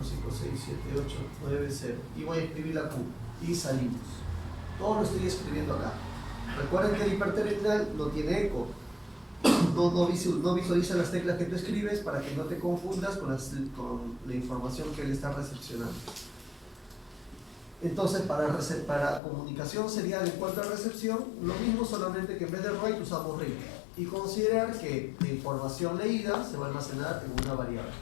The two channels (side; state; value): right; drops out; at 19.2 s